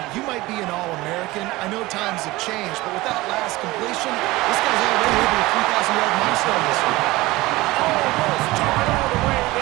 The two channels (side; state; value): left; quieter; 19.9 dB